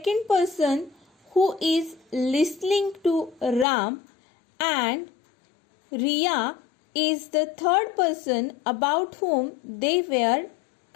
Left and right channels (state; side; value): drops out; right; at 3.7 s